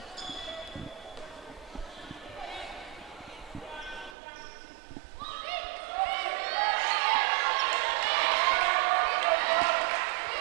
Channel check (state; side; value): drops out; left; at 4.2 s